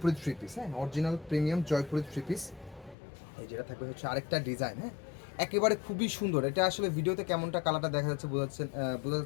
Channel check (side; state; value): right; drops out; at 3.0 s